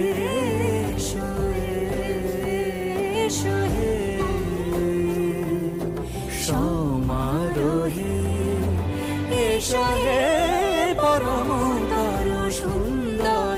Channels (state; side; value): identical; both; correlation 1.00